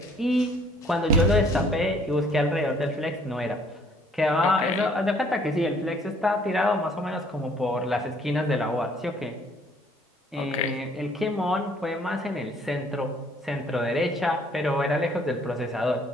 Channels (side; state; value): both; normal; correlation 0.60